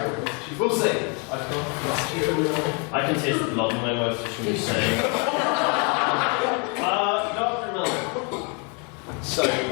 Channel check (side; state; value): right; quieter; 34.8 dB